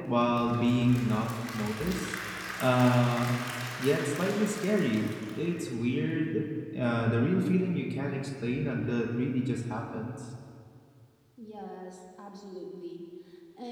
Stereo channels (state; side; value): identical; both; correlation 1.00